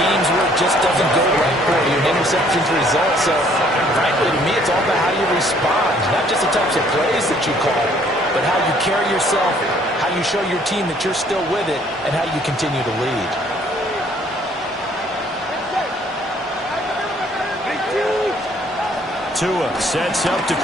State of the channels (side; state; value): both; normal; correlation 0.61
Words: where it just doesn't go right for you. An interception's the result. So, frankly, to me, it's all about how you respond. Not just the types of plays that you call, but how you carry yourself, how you show your team that you're still with it, and how you continue to lead. Tua sets up to